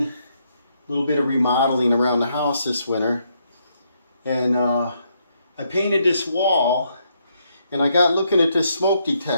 a little bit of remodeling around the house this winter. And I painted this wall and I got looking at this smoke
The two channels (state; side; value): inverted; both; correlation -0.76